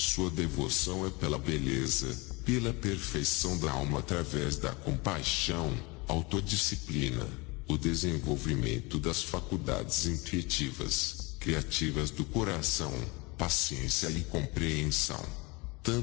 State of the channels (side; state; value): right; quieter; 26.3 dB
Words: devoção é pela beleza, pela perfeição da alma através da compaixão, autodisciplina, o desenvolvimento das faculdades intuitivas, criativas do coração, paciência e compreensão.